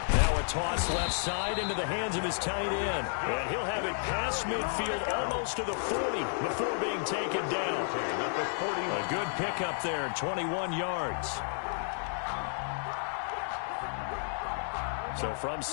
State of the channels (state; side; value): silent; right; digital silence